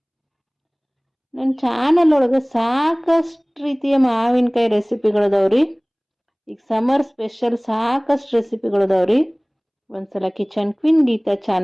ನನ್ನ ಚಾನಲ್ ಒಳಗೆ ಸಾಕಷ್ಟು ರೀತಿಯ ಮಾವಿನಕಾಯಿ ರೆಸಿಪಿಗಳದಾವ್ರಿ. ಈಗ ಸಮರ್ ಸ್ಪೆಷಲ್ ಸಾಕಷ್ಟು ರೆಸಿಪಿಗಳದಾವ್ರಿ. ಒಂದ್ಸಲ ಕಿಚನ್ ಕ್ವೀನ್ ಗೀತಾ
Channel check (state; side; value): identical; both; correlation 1.00